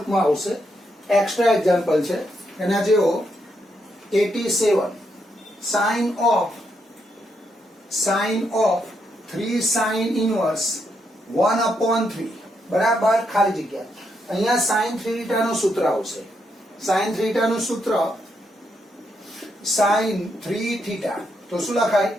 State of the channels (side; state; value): both; normal; correlation 0.79